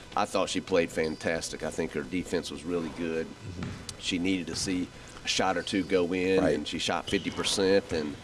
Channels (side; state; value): both; identical; correlation 1.00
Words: I thought she played fantastic. I think her defense was really good. Mm-hmm. She needed to see a shot or two go in, and she shot 50%,